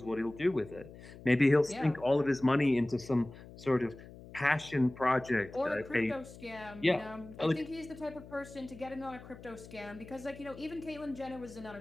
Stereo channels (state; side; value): noise; left; hum, 17 dB below the sound